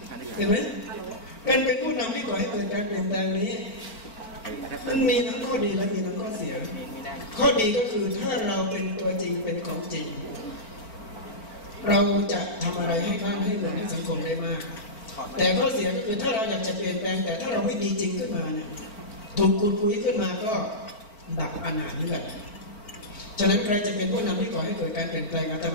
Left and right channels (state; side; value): late; right; 4.4 ms